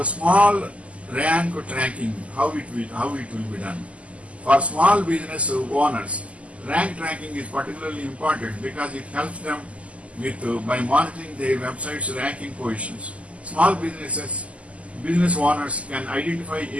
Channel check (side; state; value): left; late; 0.063 ms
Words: small rank tracking, how it will be done. For small business owners, rank tracking is particularly important because it helps them with by monitoring their website's ranking positions. Small business owners can identify